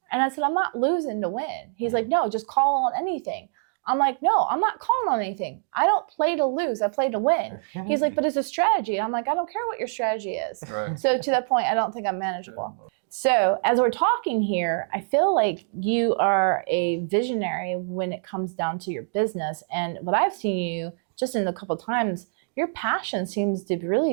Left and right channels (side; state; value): left; silent; digital silence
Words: And I said, I'm not losing to win. He's like, no, just call on anything. I'm like, no, I'm not calling on anything. I don't play to lose. I play to win. He's like, but it's a strategy. I'm like, I don't care what your strategy is. Right. So to that point, I don't think I'm manageable. So as we're talking here, I feel like you are a visionary when it comes down to your business. And what I've seen you just in a couple of times, your passion seems to